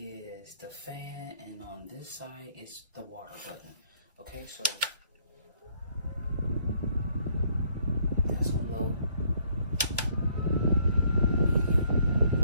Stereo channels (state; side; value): inverted; both; correlation -0.66